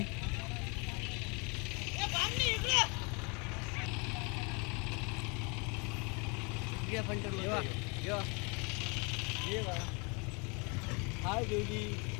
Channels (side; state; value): right; quieter; 32.4 dB